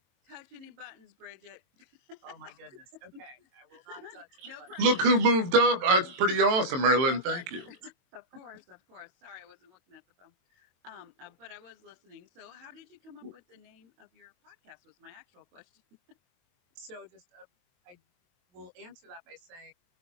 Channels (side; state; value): left; late; 22 ms